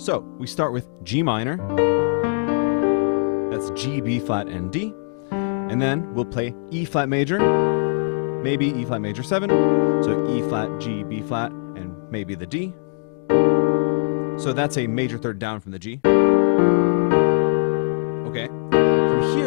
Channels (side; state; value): right; silent; 65 dB below the other